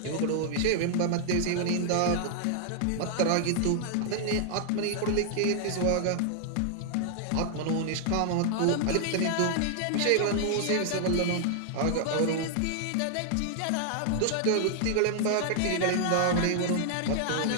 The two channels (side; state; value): both; different; correlation 0.00